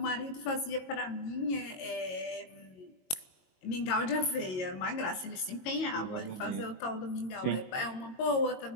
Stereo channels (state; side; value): late; right; 22 ms